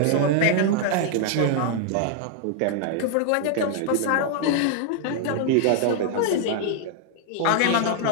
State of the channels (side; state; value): both; different; correlation 0.00